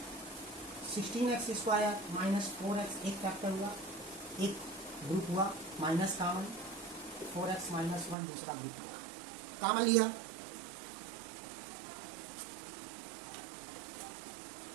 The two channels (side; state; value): left; drops out; at 8.2 s